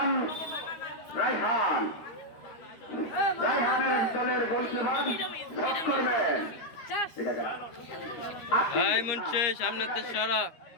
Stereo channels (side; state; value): right; late; 13 ms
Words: রায়হানের দলের গোলকিপার শট করবেন। সামনে সারা